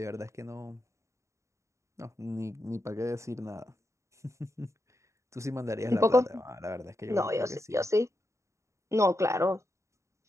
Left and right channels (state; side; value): late; left; 0.14 ms